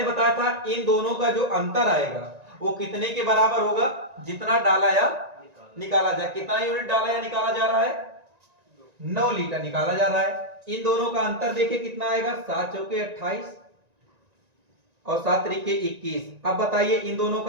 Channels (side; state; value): left; late; 1.9 ms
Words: बताया था इन दोनों का जो अंतर आएगा वो कितने के बराबर होगा? जितना डाला या निकाला जाए। कितना यूनिट डाला या निकाला जा रहा है? 9 लीटर निकाला जा रहा है। इन दोनों का अंतर देखिए कितना आएगा? 7 चौके 28 और 7 त्रिके 21। अब बताइए इन दोनों